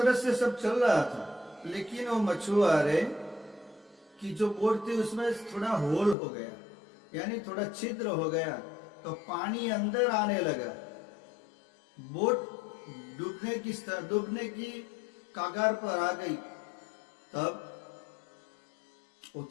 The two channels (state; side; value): drops out; right; at 6.2 s